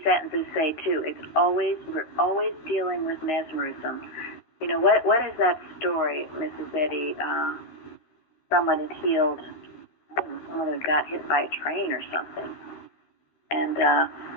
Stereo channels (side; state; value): right; late; 13 ms